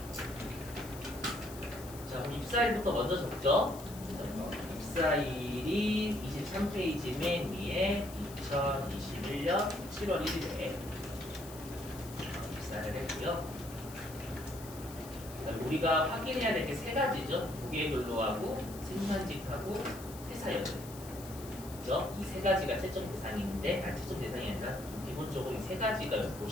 자, 그럼 입사일부터 먼저 적죠. 입사일이 23페이지 맨 위에 2021년 7월 1일에 입사를 했고요. 그다음에 우리가 확인해야 될 게 세 가지죠. 무게근로하고 생산직하고 퇴사연금. 그죠? 이 세 가지가 채점 대상인데, 채점 대상이 아니라 기본적으로 이 세 가지가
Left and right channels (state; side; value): noise; left; hiss, 16 dB below the sound